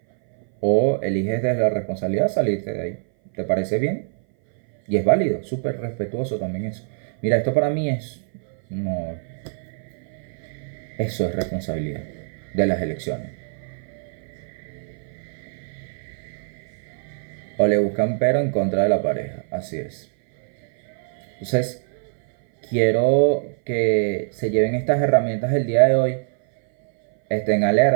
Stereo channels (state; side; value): silent; left; 58 dB below the other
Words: O eliges desde la responsabilidad salirte de ahí. ¿Te parece bien? Y es válido, súper respetuoso también eso. Mira, esto para mí es... No, eso es responsabilidad de las elecciones. O le buscan pero en contra de la pareja, así es. Entonces, quiero que se lleven estas herramientas el día de hoy, estén